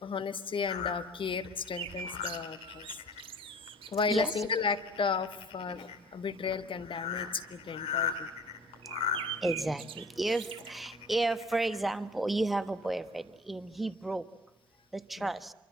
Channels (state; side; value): normal; both; correlation 0.47